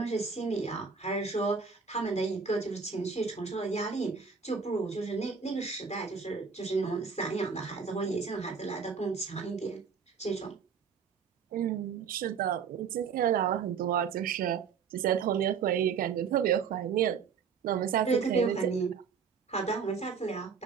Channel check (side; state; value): left; quieter; 6.0 dB